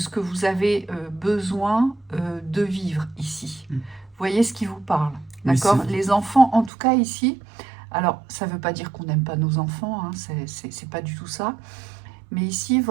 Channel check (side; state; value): left; drops out; at 6.7 s